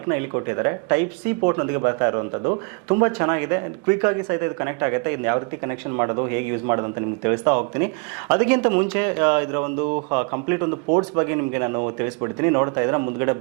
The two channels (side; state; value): left; quieter; 33.6 dB